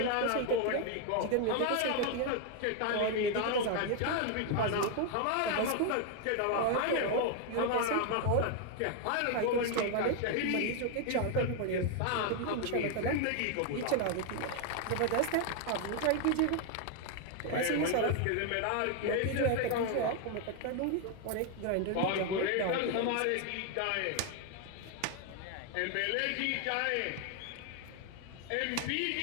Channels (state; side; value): different; both; correlation 0.01